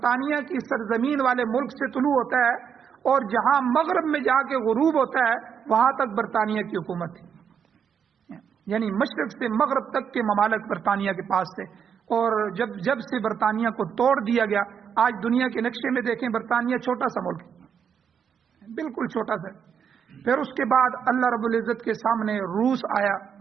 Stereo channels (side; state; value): left; quieter; 7.5 dB